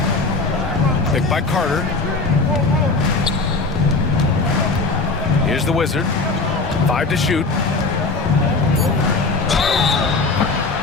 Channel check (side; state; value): right; quieter; 3.8 dB